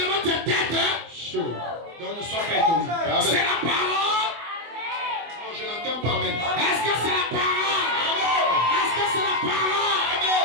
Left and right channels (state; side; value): late; left; 24 ms